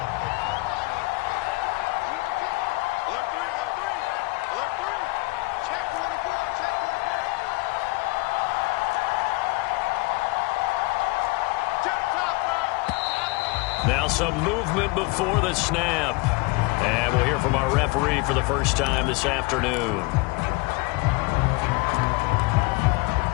Now some movement before the snap. And we'll hear from our referee for the first time this afternoon.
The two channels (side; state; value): right; quieter; 25.0 dB